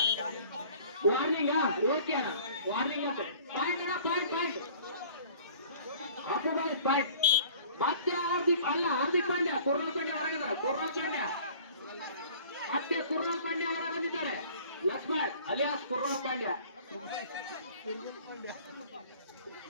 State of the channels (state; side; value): inverted; both; correlation -0.48